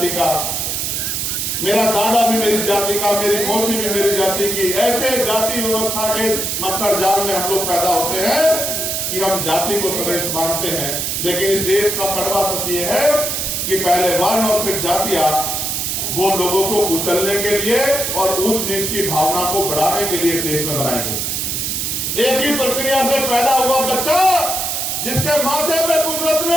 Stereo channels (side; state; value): right; noise; hiss, 1 dB below the sound